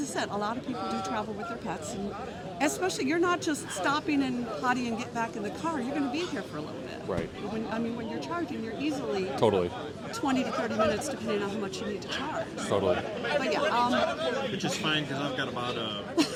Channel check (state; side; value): identical; both; correlation 1.00